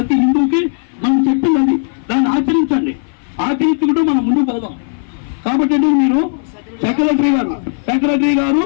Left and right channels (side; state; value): right; silent; 61 dB below the other